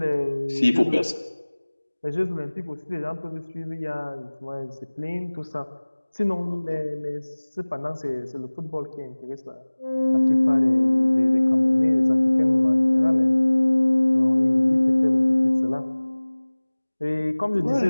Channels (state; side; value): inverted; both; correlation -1.00